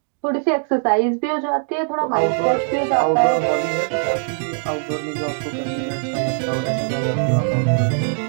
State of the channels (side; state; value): left; silent; 65 dB below the other